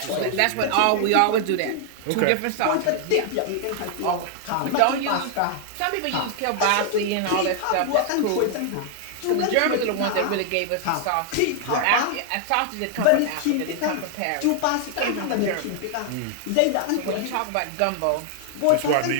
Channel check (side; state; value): both; different; correlation 0.00